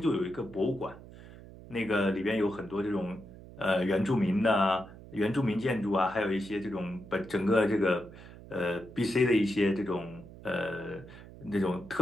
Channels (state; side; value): noise; right; hum, 17 dB below the sound